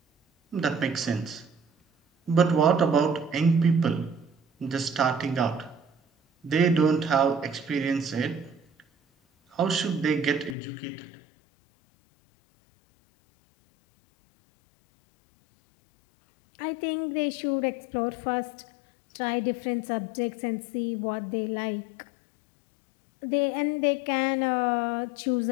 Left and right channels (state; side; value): drops out; right; at 10.6 s